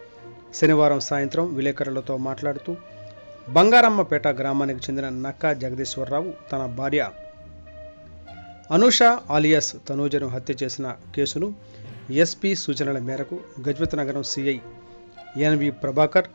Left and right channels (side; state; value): both; inverted; correlation -1.00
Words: శనివారం సాయంత్రం విలేకరులతో మాట్లాడుతూ బంగారమ్మపేట గ్రామానికి చెందిన నక్కా జగదీశ్వరరావు తన భార్య అనూష ఆలియాస్ తనూజను హత్య చేసిన కేసును ఎస్పీ సూచనల మేరకు Gajapathinagaram CI NV Prabhakar,